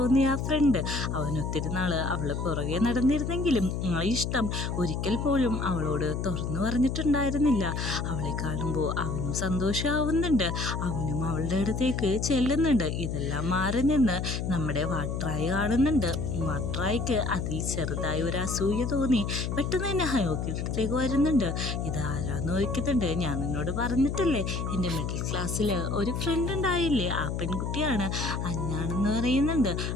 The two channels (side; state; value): left; noise; hum, 2 dB below the sound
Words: ആ ഫ്രണ്ട്. അവൻ ഒത്തിരി നാള് അവള് പുറകെ നടന്നിരുന്നെങ്കിലും ഇഷ്ടം ഒരിക്കൽ പോലും അവളോട് തുറന്നു പറഞ്ഞിട്ടുണ്ടായിരുന്നില്ല. അവളെ കാണുമ്പോൾ അവനും സന്തോഷമാവുന്നുണ്ട്. അവനും അവളുടെ അടുത്തേക്ക് ചെല്ലുന്നുണ്ട്. ഇതെല്ലാം മാറി നിന്ന് നമ്മുടെ വാട്രായി കാണുന്നുണ്ട്. വാട്രായിക്ക് അതിൽ ചെറുതായി ഒരു അസൂയ തോന്നി. പെട്ടെന്ന് തന്നെ ഹയോക്കിയുടെ അടുത്തേക്ക് വരുന്നുണ്ട്. ഇതാരാന്ന് ചോദിക്കുന്നുണ്ട്. ഞാൻ നിന്നോട് പറഞ്ഞിട്ടില്ലേ എൻ്റെ മിഡിൽ ക്ലാസ്സിൽ ഒരു ഫ്രണ്ട് ഉണ്ടായില്ലേ, ആ പെൺകുട്ടിയാണ് അന്നാണെന്ന് പറയുന്നുണ്ട്.